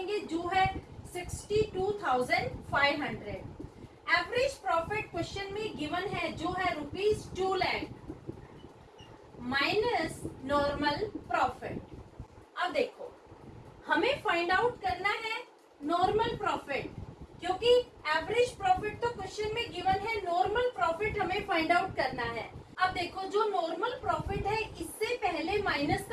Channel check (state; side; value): identical; both; correlation 1.00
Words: जो है 62,500। एवरेज प्रॉफिट क्वेश्चन में गिवन है, जो है ₹2 lakh माइनस नॉर्मल प्रॉफिट। अब देखो हमें फाइंड आउट करना है नॉर्मल प्रॉफिट, क्योंकि एवरेज प्रॉफिट तो क्वेश्चन में गिवन है, नॉर्मल प्रॉफिट हमें फाइंड आउट करना है। अब देखो जो नॉर्मल प्रॉफिट है इससे पहले माइनस